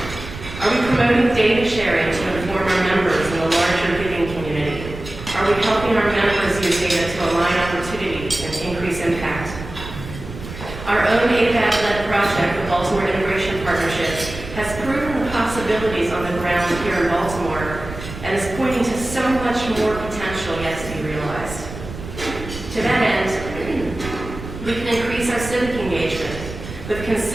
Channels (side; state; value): right; noise; rumble, 11 dB below the sound